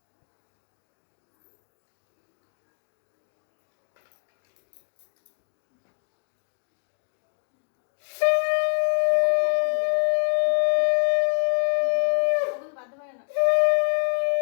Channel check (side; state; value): right; silent; digital silence